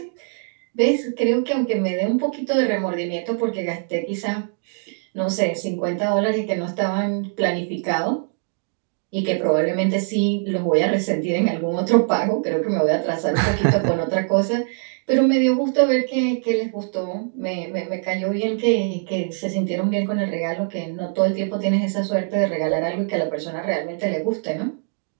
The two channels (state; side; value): silent; left; 64 dB below the other